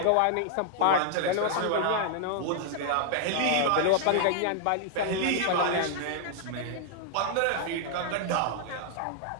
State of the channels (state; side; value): different; both; correlation 0.00